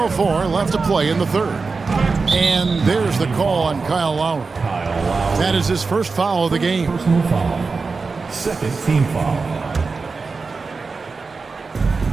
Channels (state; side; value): quieter; left; 4.4 dB